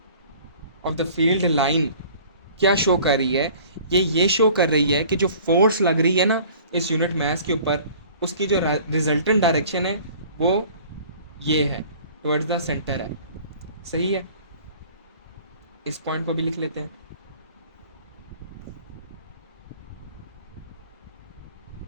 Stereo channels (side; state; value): both; inverted; correlation -0.49